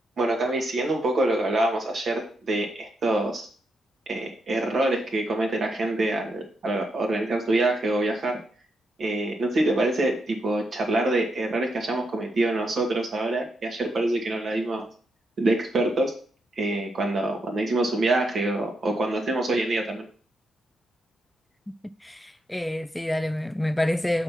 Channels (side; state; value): both; normal; correlation 0.82